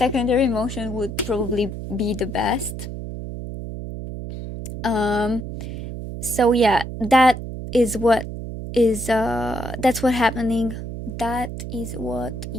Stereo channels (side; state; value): right; noise; hum, 7 dB below the sound